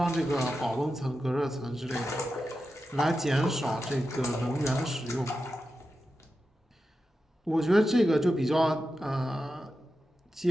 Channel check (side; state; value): both; normal; correlation 0.91